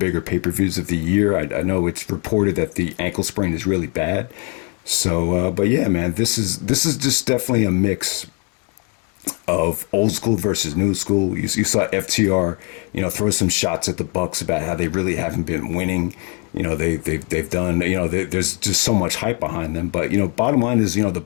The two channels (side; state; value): right; quieter; 32.5 dB